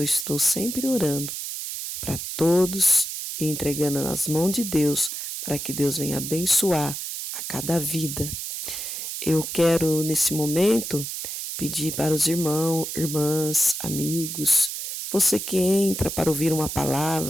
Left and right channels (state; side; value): noise; right; hiss, 6 dB below the sound